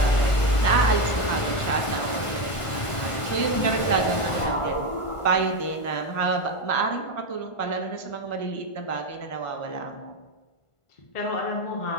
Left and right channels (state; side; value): late; right; 1.5 ms